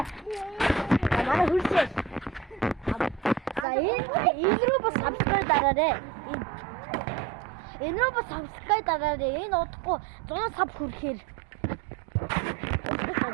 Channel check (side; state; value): left; drops out; at 3.7 s